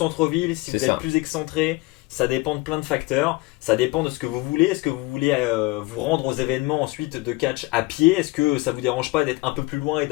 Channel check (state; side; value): quieter; right; 22.7 dB